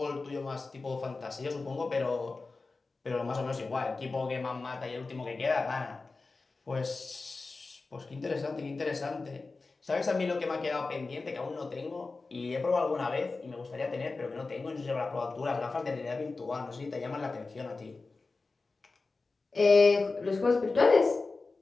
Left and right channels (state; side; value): quieter; right; 3.8 dB